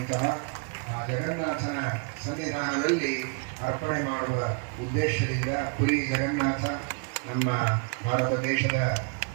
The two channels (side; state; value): left; quieter; 37.8 dB